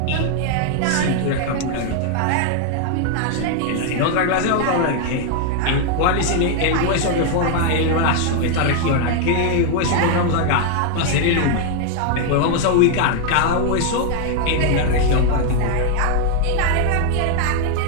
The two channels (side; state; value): both; different; correlation 0.00